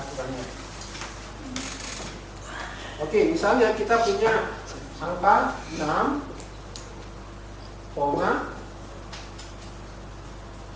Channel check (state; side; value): identical; both; correlation 1.00